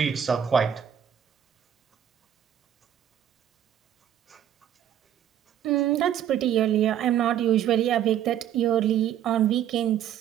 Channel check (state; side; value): quieter; left; 10.1 dB